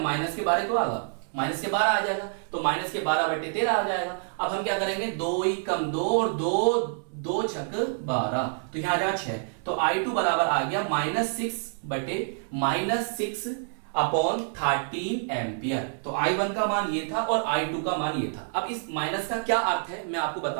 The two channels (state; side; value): silent; left; 60 dB below the other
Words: के 12 तो आएगा, माइनस के 12 आ जाएगा, तो माइनस के 12/13 आ जाएगा। अब हम क्या करेंगे, 2 ही कम 2 और 2 छक 12, तो यहाँ आ जाएगा 6। तो i2 बराबर आ गया -6/13 एम्पियर। तो i1 का मान ये था और i2 का मान ये था। अब इस माइनस का क्या अर्थ है मैं आपको